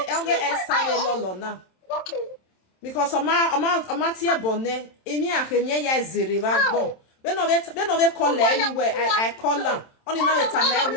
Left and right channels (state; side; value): late; right; 27 ms